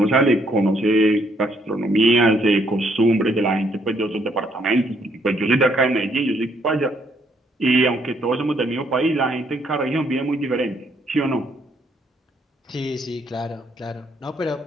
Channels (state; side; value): normal; both; correlation 0.70